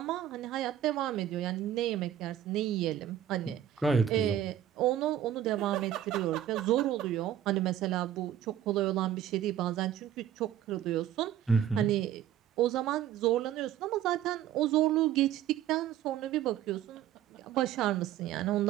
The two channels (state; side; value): quieter; left; 10.9 dB